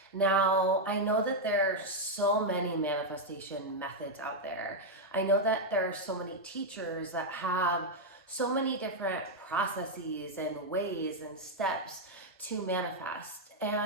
Now, I know that there are so many manifestation methods out there. I know that there are so many teachers that have so many different processes and ways and steps to manifest.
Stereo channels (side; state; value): both; normal; correlation 0.00